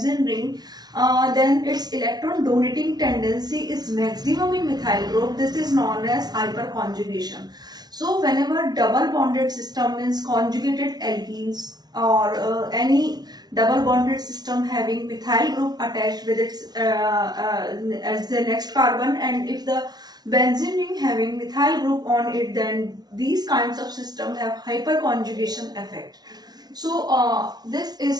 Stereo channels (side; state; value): left; late; 0.19 ms